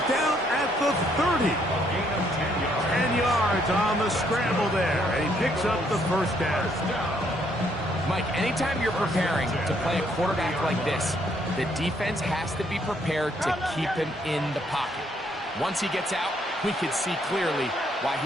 down at the 30. Gain of 10 yards. 10 yards on the scramble there. And he picks up the first down. Mike, anytime you're preparing to play a quarterback like this, the defense has to be prepared to keep him in the pocket. Once he gets out, we can see clearly why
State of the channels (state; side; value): normal; both; correlation 0.70